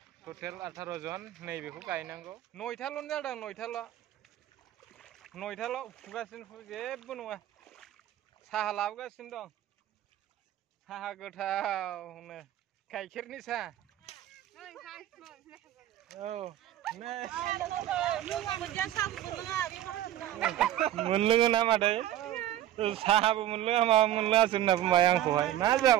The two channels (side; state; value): left; quieter; 12.8 dB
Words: टटेल 18 জন नैबेखौ गायनांगौ 9थाल' जादों 9थाल' फुगासिनो जेबो नङा साहा लाबोगासिनो दं साहा गोथावनो गाइखेरनि साहा औ नै मोनलोङो ना मादै साहाबो मोनलोङा माबा मोनलोङासो होनना बुंबाय आंखौहाय मा